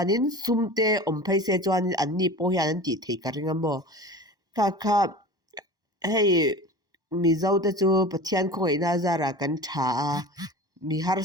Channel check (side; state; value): left; late; 1.1 ms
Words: sumte om phai se chuanin an ni po hian an ti thei ka ringa mo kha hei mizo te chu pathian khoi na zara kan tha mi